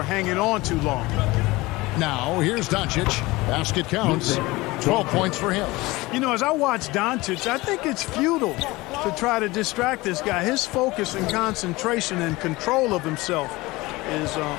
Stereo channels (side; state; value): right; quieter; 21.1 dB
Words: hanging on too long. Now, here's Doncic. Basket counts. 12 points for him. You know, as I watch Doncic, I think it's futile to try to distract this guy. His focus and concentration and control of himself is